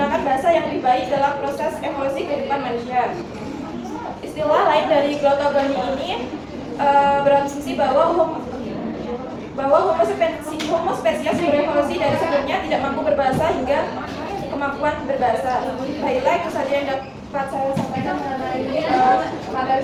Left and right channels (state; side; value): identical; both; correlation 1.00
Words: bahasa yang lebih baik dalam proses evolusi kehidupan manusia. Istilah lain dari glottogoni ini berasumsi bahwa Homo spesies berevolusi dari sebelumnya tidak mampu berbahasa hingga kemampuan berbahasa. Baiklah, itu saja yang dapat saya sampaikan mengenai materi